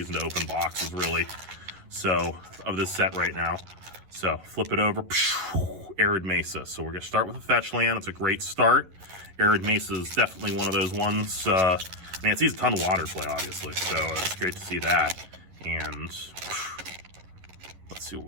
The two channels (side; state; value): left; late; 11 ms